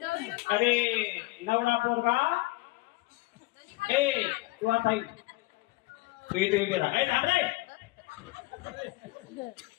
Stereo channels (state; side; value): quieter; right; 22.0 dB